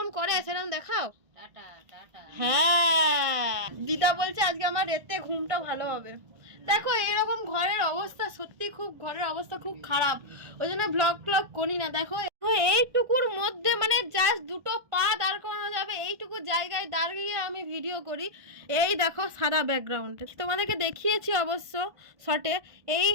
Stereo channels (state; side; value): late; left; 1.5 ms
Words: করে সেরকম দেখাও। Tata tata. হ্যাঁ, দিদা বলছে আজকে আমার রাতে ঘুমটা ভালো হবে। দেখো এইরকম ঘরের অবস্থা, সত্যি খুব ঘরের অবস্থা খুব খারাপ, ওই জন্য ব্লগ করি না। দেখো এইটুকুর মধ্যে মানে জাস্ট 2টো পা দাঁড় করানো যাবে, এইটুকু জায়গায় দাঁড়িয়ে আমি ভিডিও করি। এই দেখো সাদা ব্যাকগ্রাউন্ড, তোমাদেরকে দেখিয়েছি অবশ্য শর্টে। এই